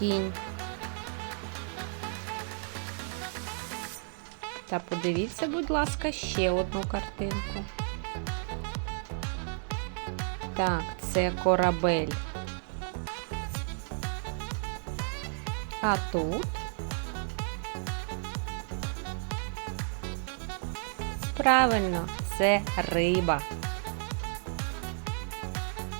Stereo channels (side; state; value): left; silent; 56 dB below the other